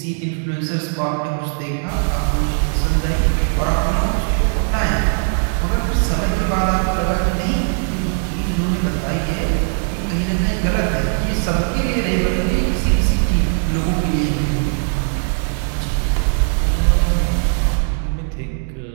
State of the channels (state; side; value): silent; left; 60 dB below the other